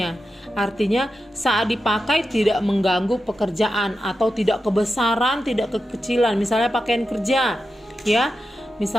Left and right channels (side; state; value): both; normal; correlation 0.90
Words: Artinya saat dipakai tidak mengganggu pekerjaan atau tidak kebesaran, tidak kekecilan. Misalnya pakaian kerja, ya,